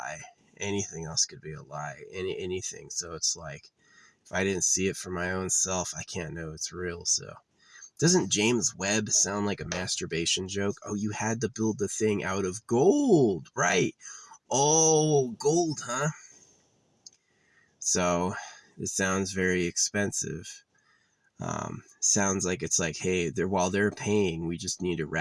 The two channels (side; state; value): both; identical; correlation 1.00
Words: Anything else could be a lie. Anything. So it's like, if I didn't see it for my own self, I can't know it's real. So doesn't James Webb sound like a masturbation joke? Oh, you had to build the thing out of gold, right? Oh, gold, huh? So it sounds very expensive. Sounds like it's like, hey, while they're paying, we just need to